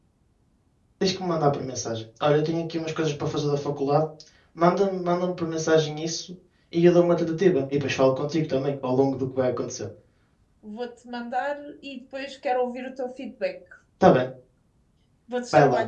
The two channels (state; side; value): identical; both; correlation 1.00